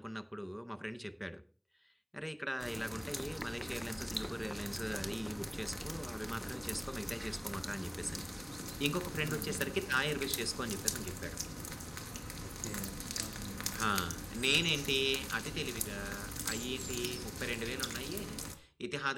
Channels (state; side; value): identical; both; correlation 1.00